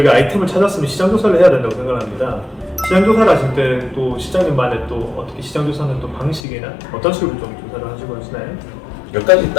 아이템을 찾았으면 시장 조사를 해야 된다고 생각합니다. 시장 조사를 하실 때 또 시장님만의 또 어떻게 시장 조사는 또 방식이나 어떤 식으로 좀 조사를 하시고 하시나요? 몇 가지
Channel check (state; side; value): drops out; right; at 6.4 s